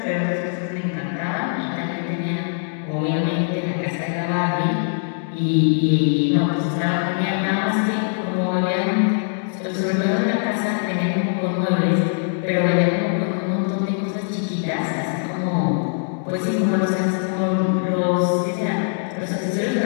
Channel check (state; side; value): silent; right; digital silence